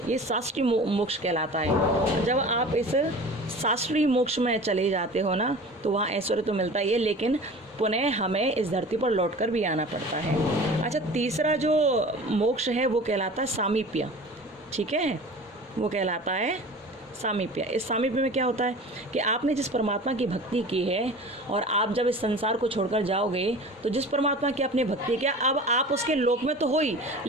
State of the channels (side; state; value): both; normal; correlation 0.39